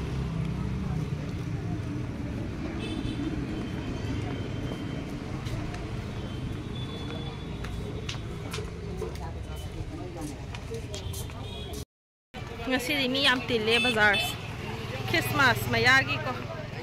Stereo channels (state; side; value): identical; both; correlation 1.00